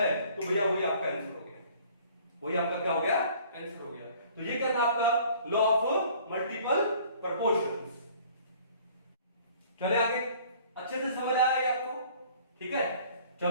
तो भैया वही आपका आंसर हो गया, वही आपका क्या हो गया आंसर हो गया। तो ये क्या था आपका लॉ ऑफ मल्टीपल प्रोपोर्शंस। चले आगे, अच्छे से समझ आया ये आपको, ठीक है।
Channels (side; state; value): both; inverted; correlation -0.53